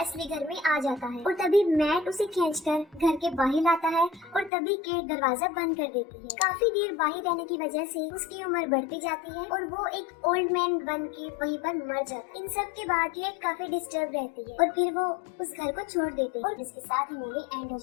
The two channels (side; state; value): right; drops out; at 4.5 s